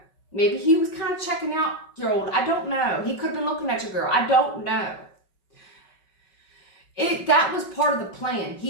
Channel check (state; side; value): late; right; 5.3 ms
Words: Maybe he was kind of checking out your old. I don't know. He could have been looking at your girl. I don't know. That was part of the plan.